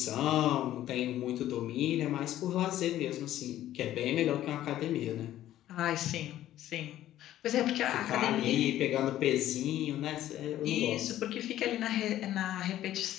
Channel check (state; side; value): quieter; right; 13.1 dB